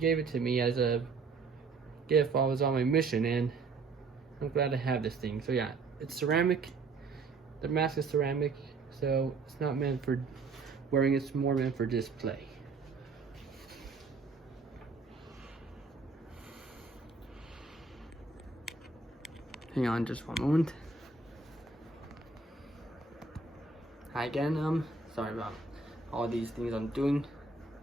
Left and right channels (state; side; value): quieter; left; 4.2 dB